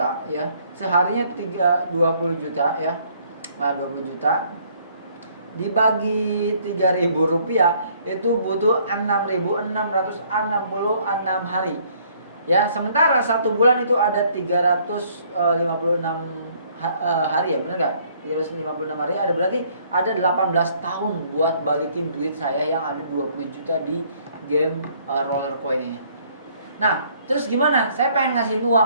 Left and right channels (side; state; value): both; inverted; correlation -0.62